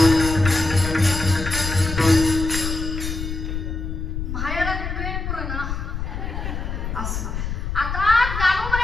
माहेरात वेळ पुरणा असं. आता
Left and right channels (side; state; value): left; noise; rumble, 4 dB below the sound